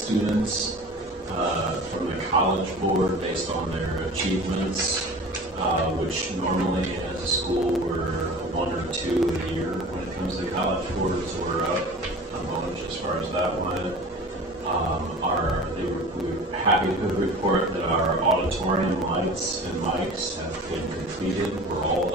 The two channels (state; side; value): normal; both; correlation 0.39